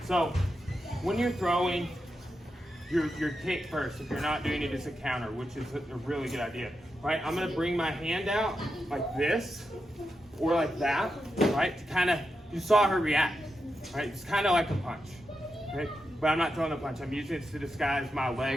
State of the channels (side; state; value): both; normal; correlation 0.87